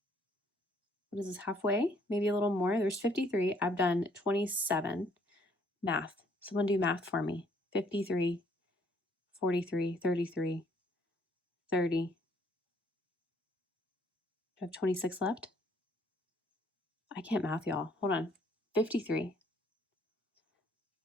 what is this, halfway? Maybe a little more. There's 53. I've done 27. Math. Someone do math for me. 53, 43, 33, 30. Do I have 26 left? I can't math, y'all. Hold on. 53,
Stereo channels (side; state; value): both; normal; correlation 0.65